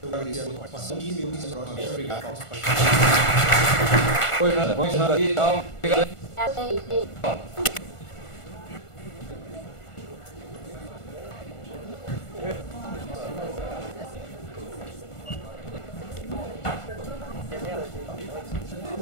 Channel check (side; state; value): right; late; 1.5 ms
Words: Eu agradeço a sua participação e me unisco próximo. Obrigado. Oi, Nanda. Vamos encerrar aqui. Tchau. Obrigado.